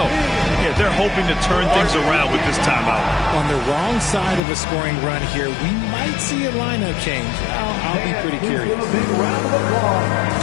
Yeah, they're hoping to turn things around with this timeout. On the wrong side of a scoring run here, we might see a lineup change. I'll be pretty curious. A big round of applause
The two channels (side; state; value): right; drops out; at 4.4 s